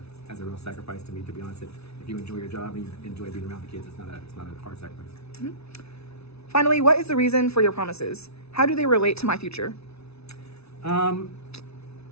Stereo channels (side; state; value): right; late; 0.79 ms